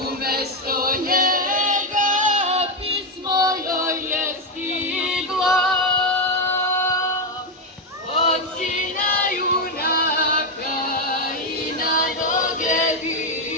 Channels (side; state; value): both; normal; correlation 0.06